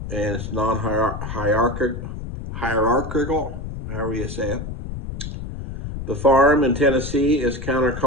and it's non-hierarchical, however you say it. The Farm in Tennessee is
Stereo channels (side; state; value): left; noise; rumble, 8 dB below the sound